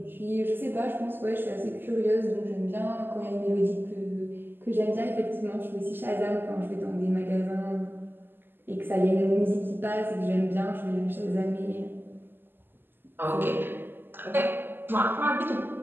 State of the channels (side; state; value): left; late; 0.096 ms